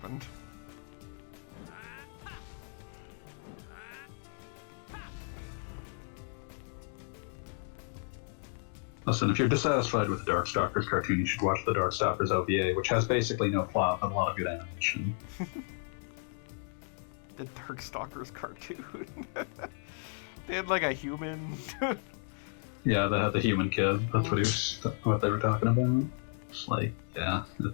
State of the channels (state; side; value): silent; right; 56 dB below the other